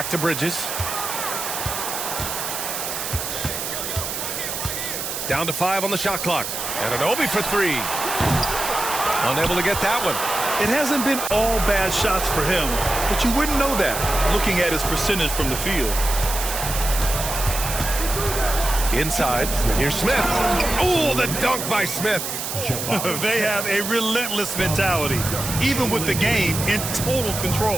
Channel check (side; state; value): right; noise; hiss, 4 dB below the sound